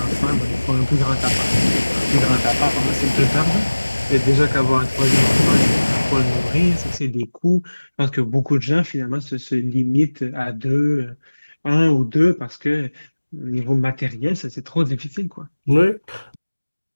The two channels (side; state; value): both; inverted; correlation -1.00